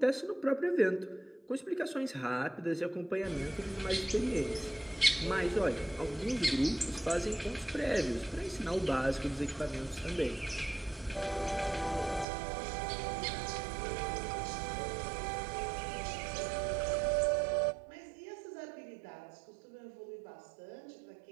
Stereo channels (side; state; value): left; drops out; at 12.2 s